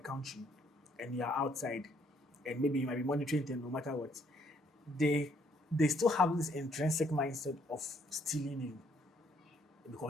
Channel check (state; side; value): normal; both; correlation 0.67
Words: country and you are outside and maybe you might be monitoring them no matter what, they still have this intrinsic mindset of stealing you